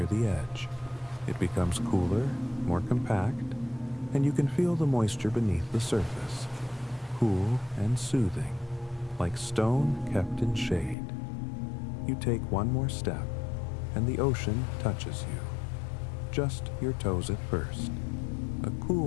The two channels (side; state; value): right; drops out; at 11.0 s